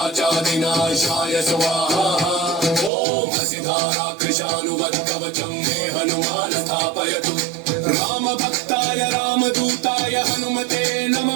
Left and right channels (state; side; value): drops out; left; at 2.9 s